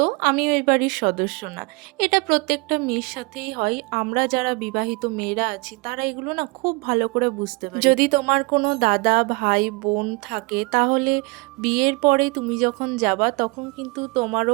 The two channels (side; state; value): left; quieter; 28.4 dB